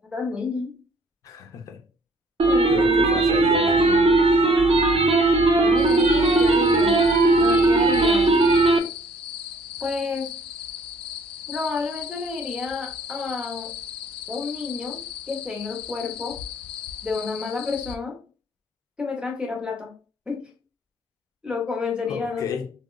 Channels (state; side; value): normal; both; correlation 0.60